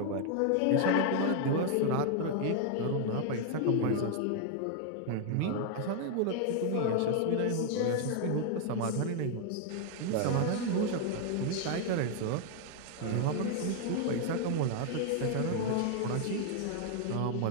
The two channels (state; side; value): different; both; correlation 0.00